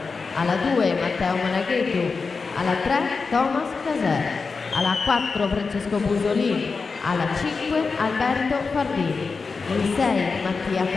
alla 2 Matteo Monaghetu, alla 3 Thomas Caser, alla 4 Francesco Busolini, alla 5 Alberto Fardini, in 6 Mattia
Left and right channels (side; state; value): right; quieter; 4.6 dB